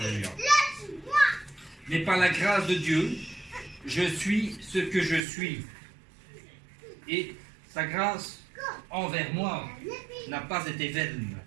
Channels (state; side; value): drops out; left; at 5.2 s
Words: Mais par la grâce de Dieu, je suis ce que je suis. Et sa grâce envers moi n'a pas été vaine.